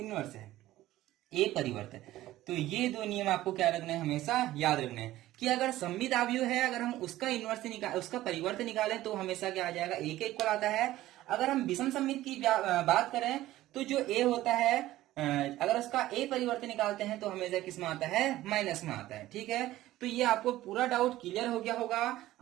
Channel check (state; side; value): quieter; left; 15.4 dB